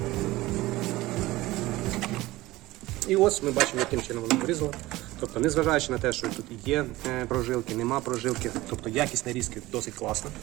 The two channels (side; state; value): left; quieter; 18.4 dB